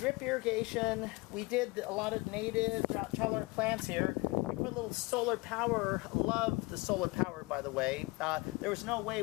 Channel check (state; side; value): quieter; right; 24.5 dB